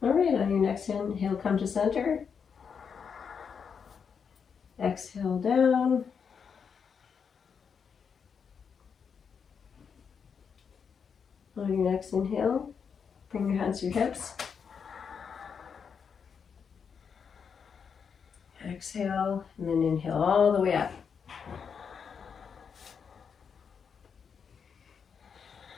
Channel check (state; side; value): quieter; right; 6.5 dB